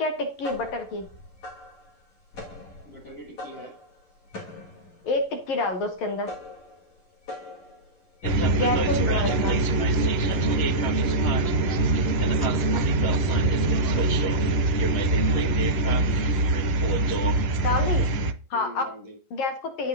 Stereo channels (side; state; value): right; late; 11 ms